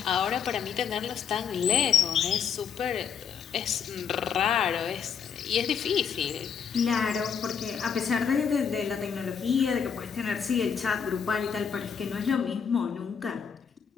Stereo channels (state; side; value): quieter; right; 7.1 dB